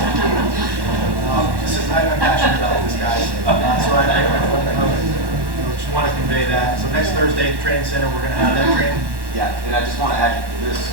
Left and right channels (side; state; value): left; late; 1.1 ms